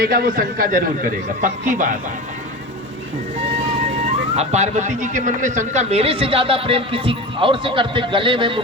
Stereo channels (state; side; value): normal; both; correlation 0.28